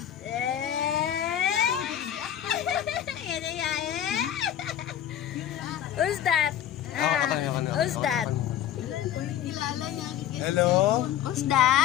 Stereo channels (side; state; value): right; quieter; 10.7 dB